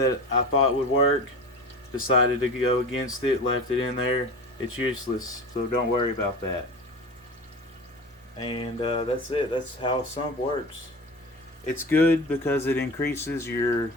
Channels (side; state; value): both; normal; correlation 0.32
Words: I thought would work. Decided to go against it, left it in there. It's useless, so don't worry about that. And that's it. That's how a sump works. It's good because it increases your